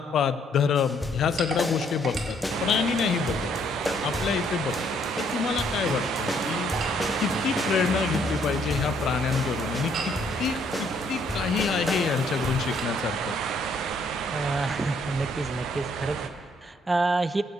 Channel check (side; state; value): both; normal; correlation 0.67